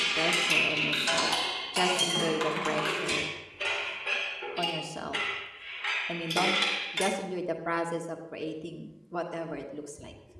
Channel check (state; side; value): identical; both; correlation 1.00